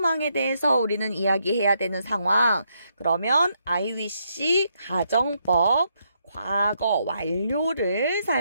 대해서 우리는 이야기해야 되는 상황. 그러면 I wish 가정법 과거 완료를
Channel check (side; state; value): both; inverted; correlation -0.77